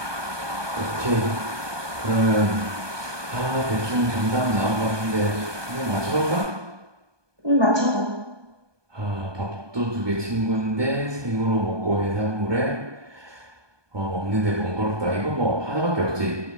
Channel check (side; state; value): left; late; 1.2 ms